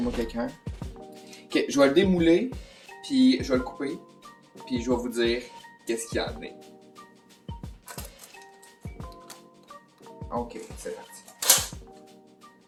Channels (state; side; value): identical; both; correlation 1.00